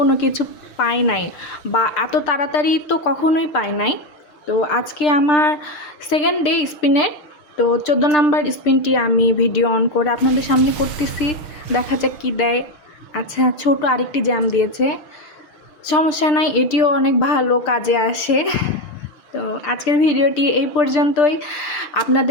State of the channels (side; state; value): right; late; 6.7 ms